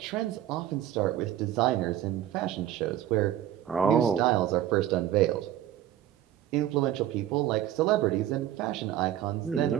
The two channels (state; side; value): quieter; left; 11.8 dB